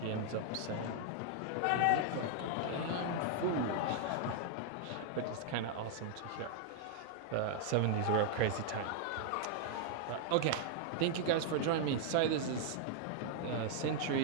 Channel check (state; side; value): different; both; correlation 0.00